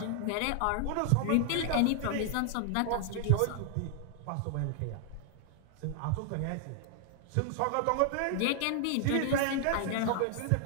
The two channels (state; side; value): different; both; correlation 0.00